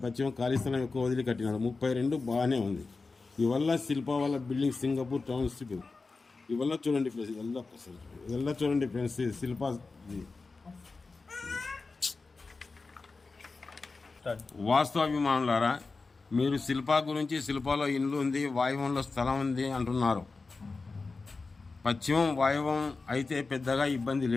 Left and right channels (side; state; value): right; quieter; 4.0 dB